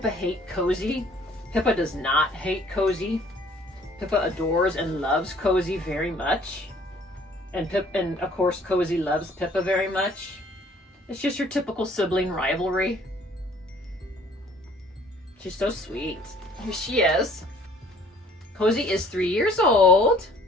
hate Cozy? Pippa does not hate Cozy. Pippa adores and loves Cozy very much. And of course Cozy loves Pippa very much. It's just your typical sibling rivalry. She's so sweet. Here she is. Cozy is 3 years old.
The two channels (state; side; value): normal; both; correlation 0.56